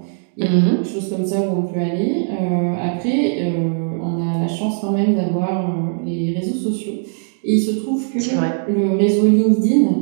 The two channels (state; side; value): silent; left; 66 dB below the other